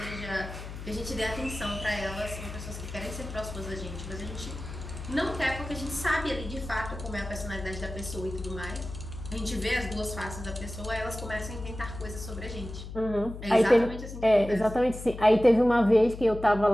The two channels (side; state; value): left; noise; hum, 10 dB below the sound